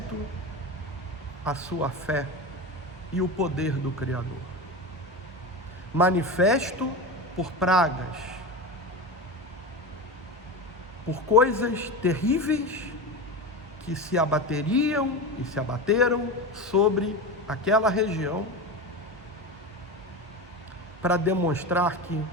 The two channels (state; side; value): normal; both; correlation 0.23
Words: a sua fé e o poder do Criador. Manifesto por pragas, por coisas terríveis que se abateriam e se abateram sobre aquela região, para demonstrar que